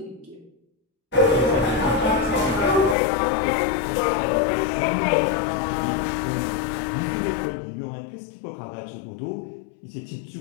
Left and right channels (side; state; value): right; drops out; at 3.0 s